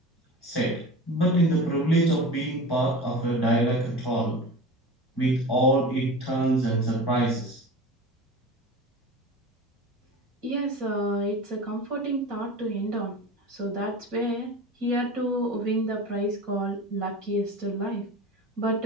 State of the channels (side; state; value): both; normal; correlation 0.32